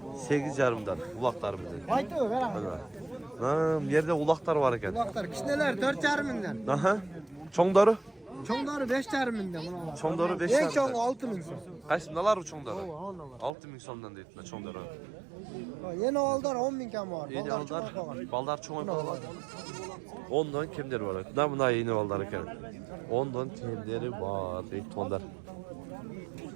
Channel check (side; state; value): left; drops out; at 13.5 s